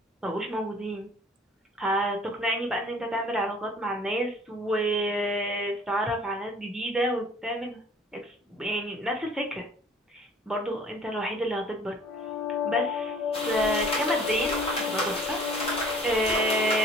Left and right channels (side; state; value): both; normal; correlation 0.51